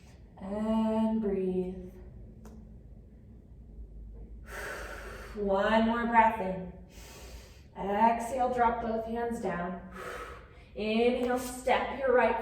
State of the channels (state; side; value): identical; both; correlation 1.00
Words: And breathe. One more breath in. Exhale, drop both hands down. Inhale, step your